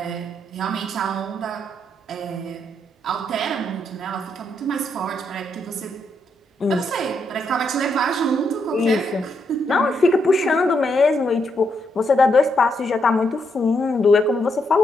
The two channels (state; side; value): normal; both; correlation 0.78